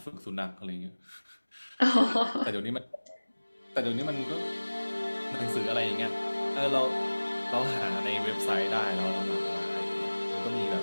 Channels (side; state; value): both; inverted; correlation -1.00